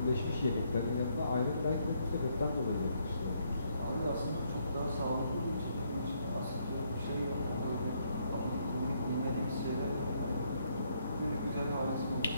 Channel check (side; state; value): both; inverted; correlation -0.72